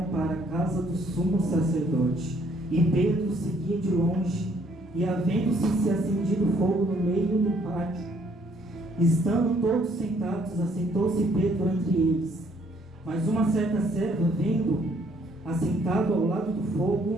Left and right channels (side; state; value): both; normal; correlation 0.65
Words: para a casa do sumo sacerdote. E Pedro seguia de longe, e havendo-se acendido fogo no meio do pátio, estando todos sentados, assentou-se Pedro entre eles. Mas uma certa serva, vendo assentado ao lado do fogo,